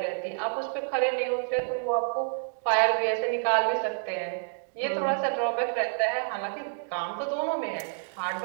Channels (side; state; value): left; silent; digital silence